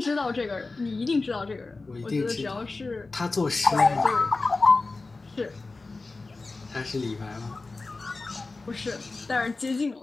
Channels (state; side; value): quieter; right; 3.6 dB